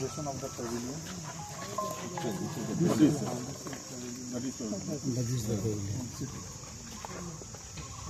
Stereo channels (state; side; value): identical; both; correlation 1.00